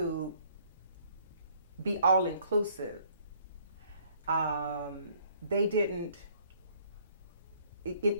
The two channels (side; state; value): both; inverted; correlation -0.61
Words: be all inclusive. They didn't.